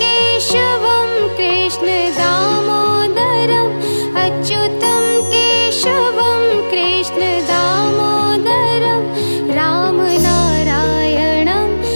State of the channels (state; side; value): inverted; both; correlation -1.00